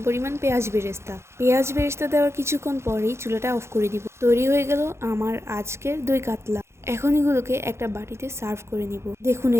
পরিমাণ পেঁয়াজ বেরেস্তা। পেঁয়াজ বেরেস্তা দেওয়ার কিছুক্ষণ পরেই চুলাটা অফ করে দিব। তৈরি হয়ে গেল আমার আজকের দই কাতলা। এখন এগুলোকে একটা বাটিতে সার্ভ করে নিব। দেখুন,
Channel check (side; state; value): left; late; 0.13 ms